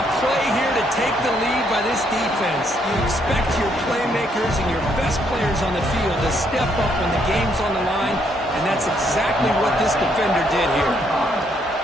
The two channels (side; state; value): both; normal; correlation 0.72